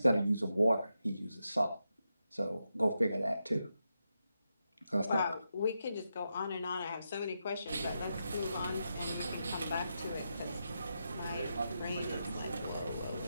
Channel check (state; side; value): inverted; both; correlation -0.86